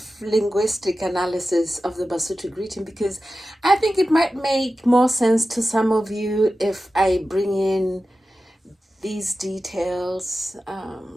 linguistic analysis of the Basotho greeting because I think it might make more sense to some of you if I bring in these details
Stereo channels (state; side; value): normal; both; correlation 0.94